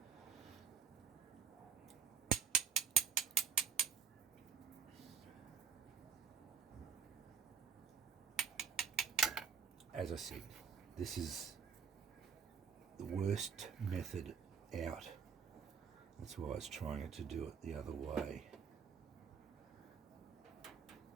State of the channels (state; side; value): quieter; left; 6.7 dB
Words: As I said, this is the worst method out. That's why I was trying to do it the other way.